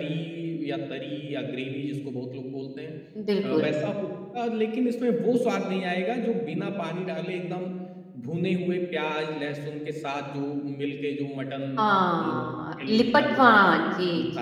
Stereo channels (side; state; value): both; identical; correlation 1.00